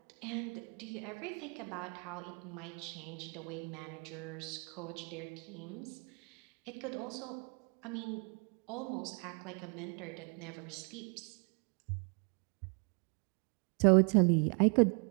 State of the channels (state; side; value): quieter; left; 37.3 dB